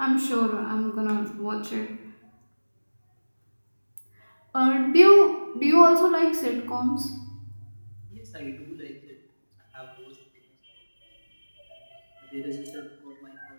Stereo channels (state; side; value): inverted; both; correlation -1.00